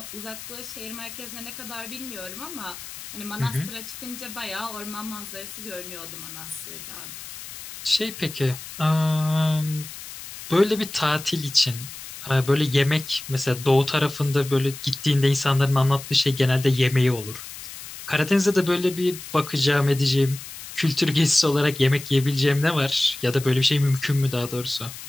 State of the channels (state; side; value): noise; left; hiss, 13 dB below the sound